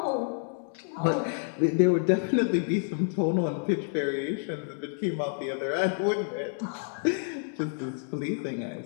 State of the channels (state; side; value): silent; right; digital silence